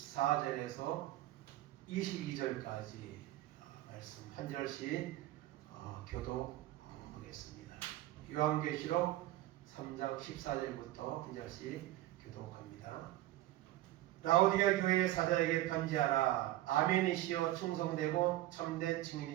22절까지 말씀 한 절씩 교독하겠습니다. 요한계시록 3장 14절부터 한 절씩 교독합니다. 라오디가 교회의 사자에게 편지하라. 아멘이시여 충성되고 참된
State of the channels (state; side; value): quieter; left; 15.7 dB